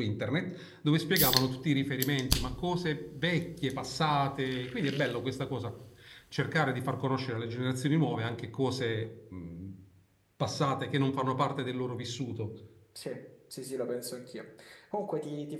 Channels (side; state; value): both; identical; correlation 1.00